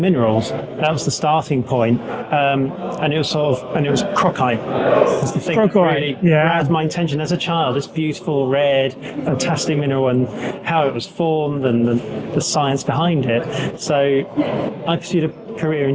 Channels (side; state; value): both; identical; correlation 1.00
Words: That was the starting point, and it was crocite. It's the thing that really grabbed my attention as a child. This beautiful, red, fantastic mineral, and how it was formed, and the science behind it. So I pursued a career in